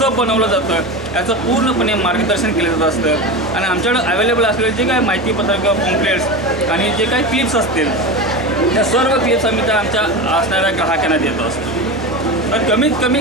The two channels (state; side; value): normal; both; correlation 0.24